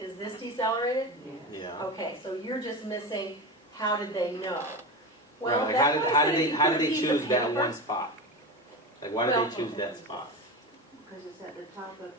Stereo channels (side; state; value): both; normal; correlation 0.24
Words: this decelerated? Yeah. Okay, so you're just missing. How did they know? Well, like how did they choose that one spot? Like why did they choose that spot? Because it's at the top